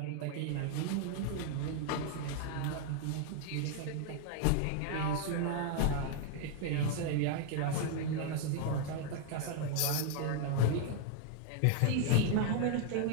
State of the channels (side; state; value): both; different; correlation 0.00